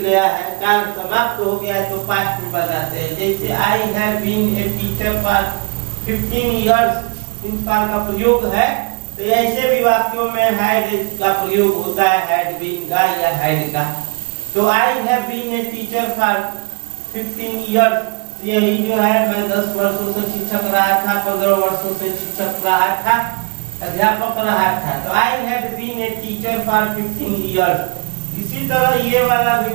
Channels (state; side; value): quieter; left; 31.0 dB